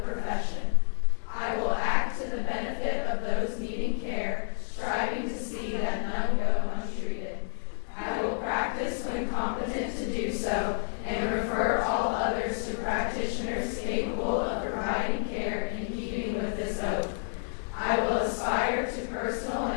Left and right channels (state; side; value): silent; right; digital silence